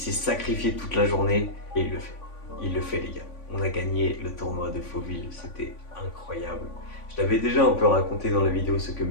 sacrifié toute la journée. Et il le fait. Il le fait, les gars. On a gagné le tournoi de Fauville. C'était incroyable. Je l'avais déjà un peu raconté dans la vidéo ce que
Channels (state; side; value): late; right; 3.5 ms